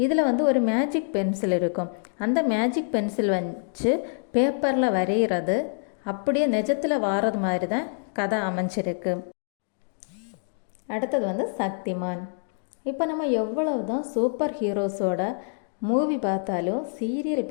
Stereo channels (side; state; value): right; silent; digital silence